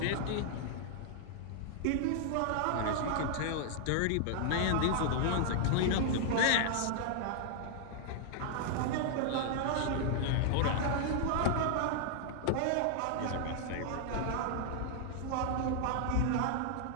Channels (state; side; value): different; both; correlation -0.01